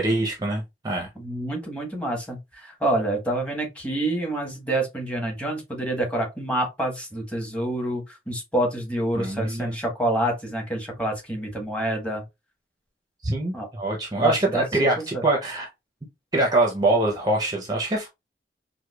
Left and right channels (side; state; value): both; normal; correlation 0.44